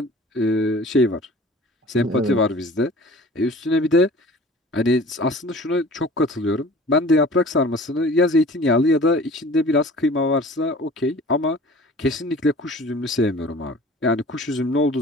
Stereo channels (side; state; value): both; normal; correlation 0.45